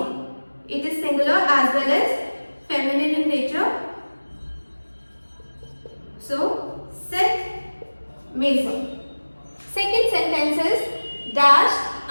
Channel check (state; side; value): inverted; both; correlation -1.00